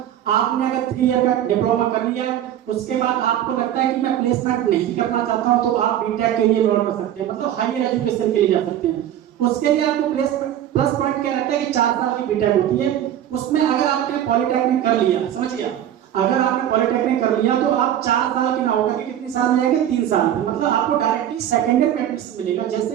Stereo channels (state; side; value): quieter; left; 11.1 dB